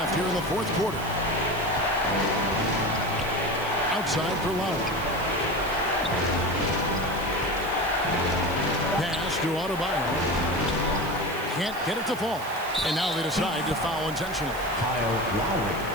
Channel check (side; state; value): right; noise; hiss, 16 dB below the sound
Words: here in the fourth quarter. Outside for Lowry. Pass to Adebayo. Can't get it to fall. And now they decide to foul intentionally. Kyle Lowry.